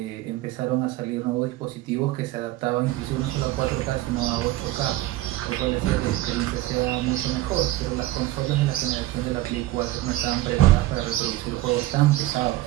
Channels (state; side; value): quieter; left; 16.7 dB